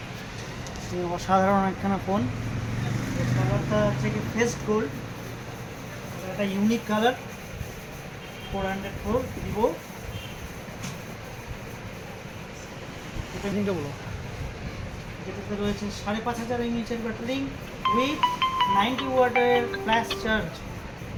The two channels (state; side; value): identical; both; correlation 1.00